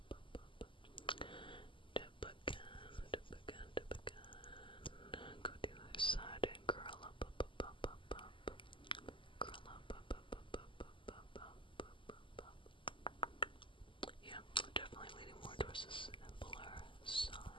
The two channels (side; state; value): right; late; 0.25 ms